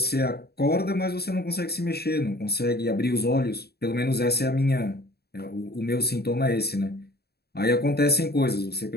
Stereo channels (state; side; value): late; right; 0.47 ms